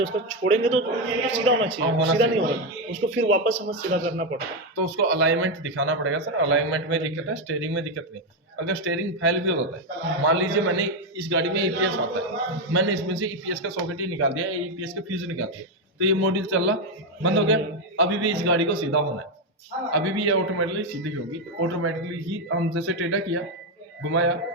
उसको छोड़ेंगे तो सीधा होना चाहिए, सीधा नहीं होगा, उसको फिर वापस हमें सीधा करना पड़ता है। तो उसको अलाइनमेंट दिखाना पड़ेगा सर। अलाइनमेंट में दिक्कत है, स्टीयरिंग में दिक्कत नहीं। अगर स्टीयरिंग फेल भी हो जाता है, मान लीजिए मैंने इस गाड़ी में ईपीएस आता है, मैंने इसमें से ईपीएस का सॉकेट ही निकाल दिया, ईपीएस का फ्यूज निकाल दिया, तो ये मॉड्यूल चल रहा बंद हो गया, अभी भी इस गाड़ी को सीधा होना है, अभी भी ये ऑटोमेटिकली सीधी होगी। ऑटोमेटिकली ही हम जैसे टेढ़ा किया, घुमाया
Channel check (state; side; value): normal; both; correlation 0.06